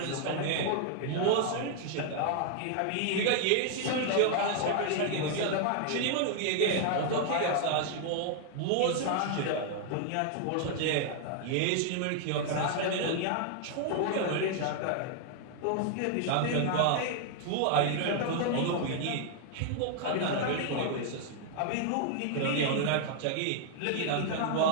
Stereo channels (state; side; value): different; both; correlation 0.00